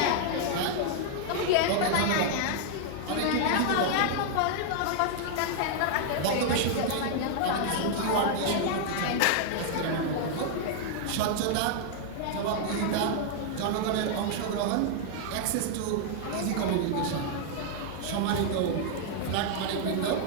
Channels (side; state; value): both; different; correlation 0.00